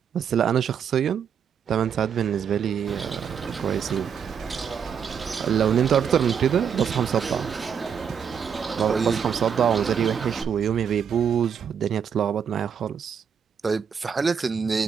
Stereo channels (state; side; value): quieter; left; 7.4 dB